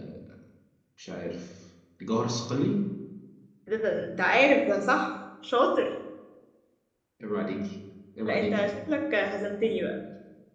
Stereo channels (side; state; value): both; identical; correlation 1.00